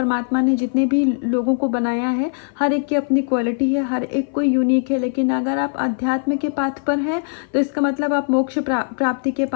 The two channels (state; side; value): silent; right; 56 dB below the other